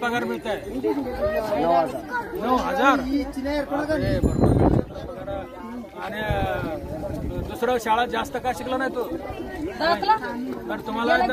मिळत आहे 9,000 आणि दुसरं शाळा जास्त का शिकला नाही तू तर तुम्हाला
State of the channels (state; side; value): identical; both; correlation 1.00